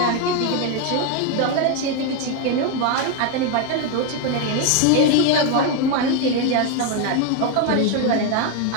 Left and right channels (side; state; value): both; different; correlation 0.01